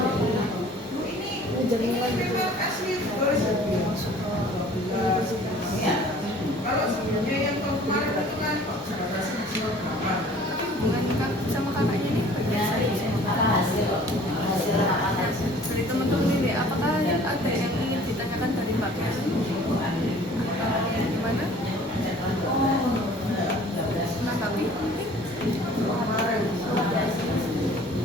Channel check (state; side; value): normal; both; correlation 0.50